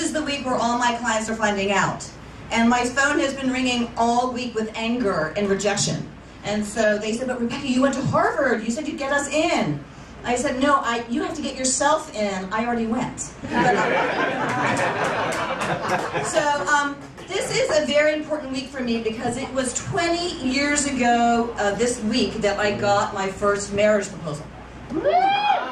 the week where all my clients are finding out. And my phone has been ringing all week with anger and rejection. And so they said, but Rebecca, you went to Harvard. You said you'd get us in. I said, no, you have to get yourself in. I already went. This is a very important week for me because it was 20 years ago this week that I got my first marriage proposal.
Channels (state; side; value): identical; both; correlation 1.00